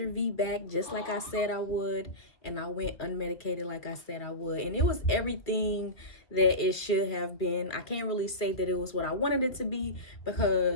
VBAC just like I said I would, and I went unmedicated like I said I would. And it was everything that it should have been. I can't really say that it was what I wanted it to be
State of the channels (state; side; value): late; right; 2.2 ms